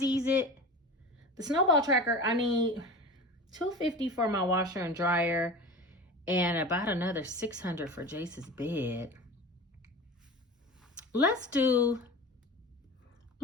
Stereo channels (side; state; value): both; normal; correlation 0.32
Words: it? The snowball tracker, I need $250 for my washer and dryer and about another $600 for Jace's bed. Let's do